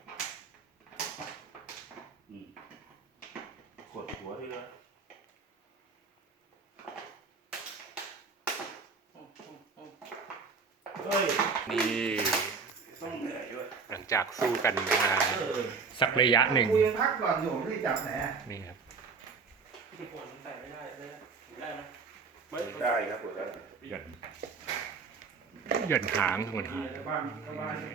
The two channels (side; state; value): left; quieter; 5.0 dB